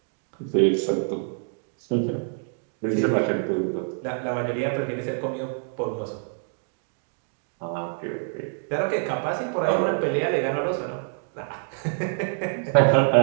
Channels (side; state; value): left; silent; 61 dB below the other